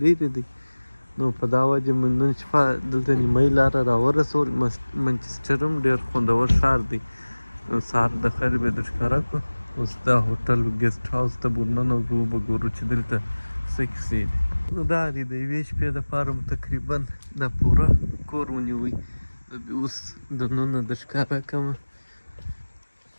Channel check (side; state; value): both; inverted; correlation -1.00